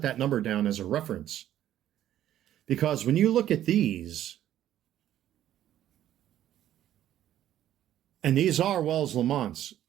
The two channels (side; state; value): left; quieter; 12.0 dB